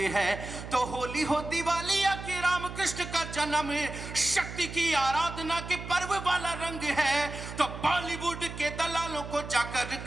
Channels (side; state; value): right; noise; hum, 10 dB below the sound